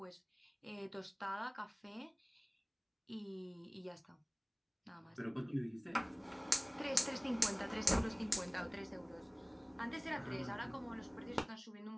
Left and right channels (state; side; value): identical; both; correlation 1.00